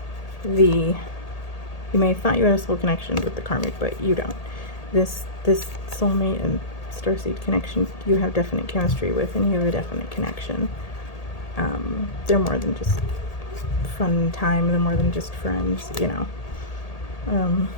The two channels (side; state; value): right; late; 1.8 ms